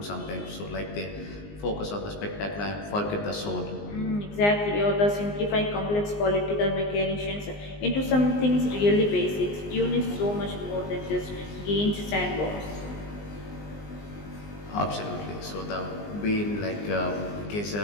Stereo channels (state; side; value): late; right; 19 ms